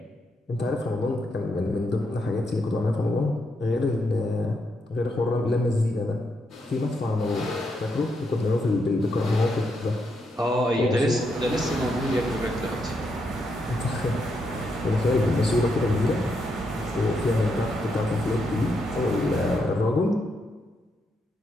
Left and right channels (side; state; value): both; normal; correlation 0.80